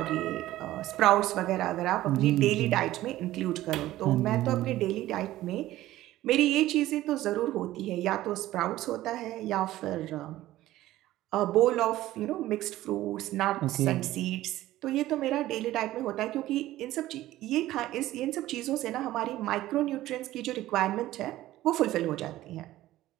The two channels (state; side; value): quieter; left; 15.3 dB